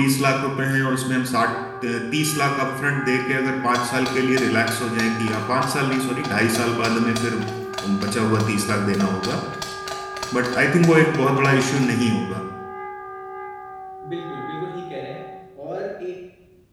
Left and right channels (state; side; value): identical; both; correlation 1.00